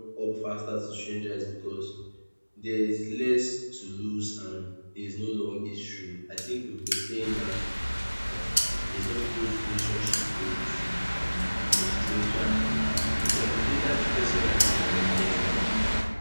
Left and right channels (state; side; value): inverted; both; correlation -1.00